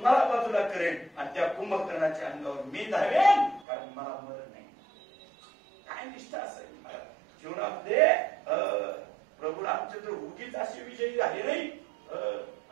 बाजूला करेन आणि त्या कुंभकर्णाच्या अंगावर मी धावेन, कारण मला मरण नाही. काय निष्ठा असेल जीवनामध्ये. प्रभू रामचंद्र उगीच असे विजयी झाले नाही,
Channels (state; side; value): drops out; left; at 3.7 s